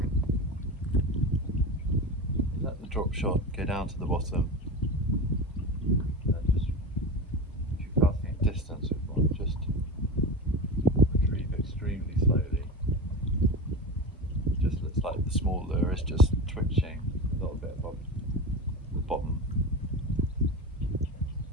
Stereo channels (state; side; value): normal; both; correlation 0.25